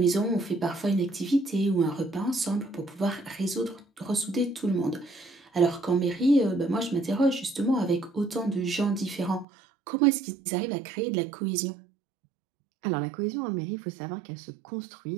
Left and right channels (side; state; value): left; drops out; at 9.5 s